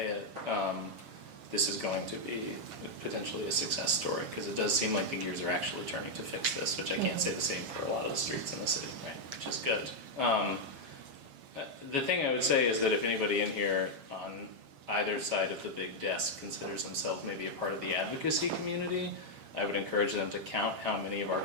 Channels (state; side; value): late; left; 7.3 ms